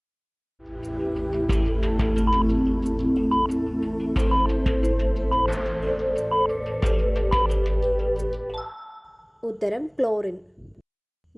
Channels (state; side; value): identical; both; correlation 1.00